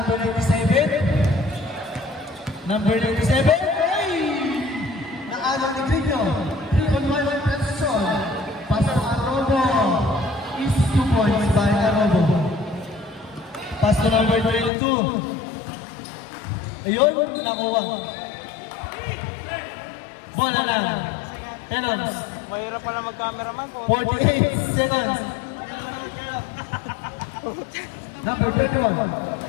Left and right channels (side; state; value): right; drops out; at 14.7 s